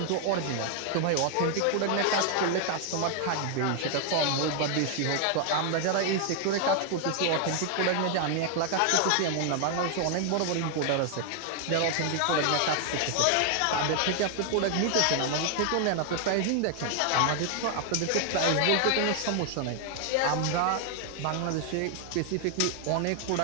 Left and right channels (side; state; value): both; different; correlation 0.00